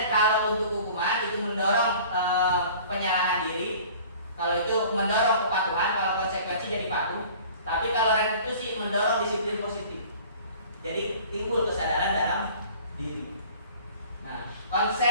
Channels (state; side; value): inverted; both; correlation -0.47